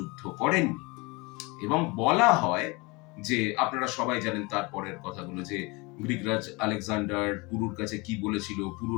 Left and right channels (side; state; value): right; quieter; 26.3 dB